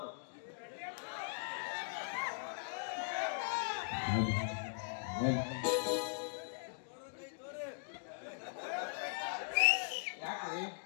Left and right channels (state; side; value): silent; right; digital silence